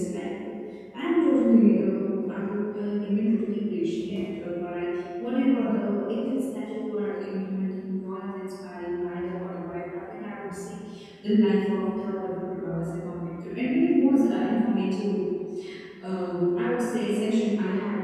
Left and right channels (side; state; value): both; identical; correlation 1.00